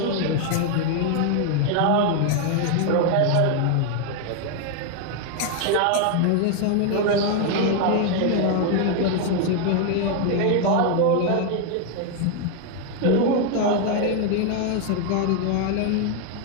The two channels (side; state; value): both; different; correlation 0.01